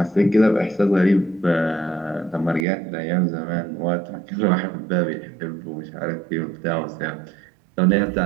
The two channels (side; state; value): left; drops out; at 2.7 s